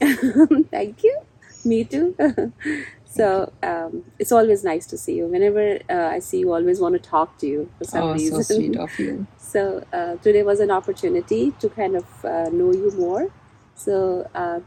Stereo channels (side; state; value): both; identical; correlation 1.00